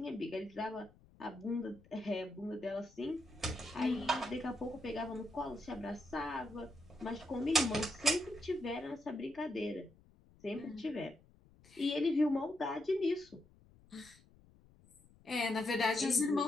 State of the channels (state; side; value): noise; left; rumble, 27 dB below the sound